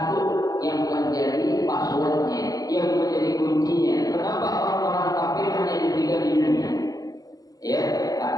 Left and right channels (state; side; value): late; right; 0.18 ms